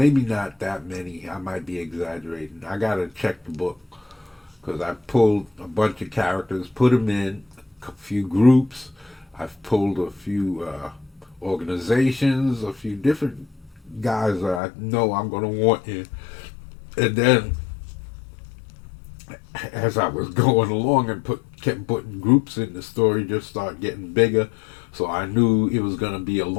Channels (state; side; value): drops out; right; at 14.6 s